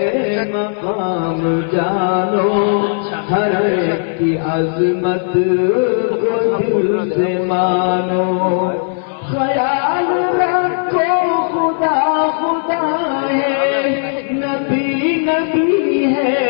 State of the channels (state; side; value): silent; right; 57 dB below the other